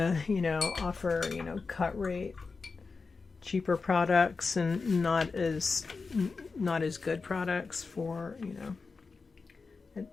you know, offer, you know, cut rate cheaper products and not as good products for, you know,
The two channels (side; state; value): right; quieter; 4.4 dB